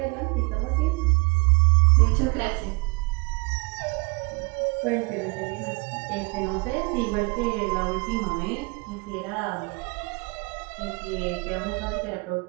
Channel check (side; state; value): left; quieter; 28.4 dB